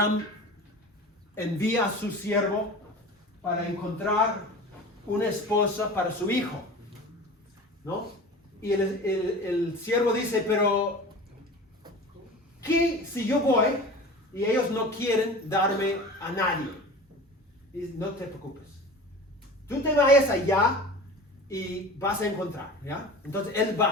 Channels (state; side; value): normal; both; correlation 0.36